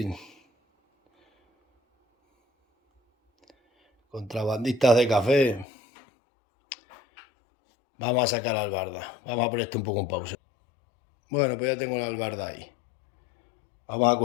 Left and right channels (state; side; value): drops out; right; at 5.7 s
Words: Contrabandistas de café. Vamos a sacar la albarda. Vamos a poner esto un poco en pausa. Bueno, pues ya tengo la albarda ahí. Vamos a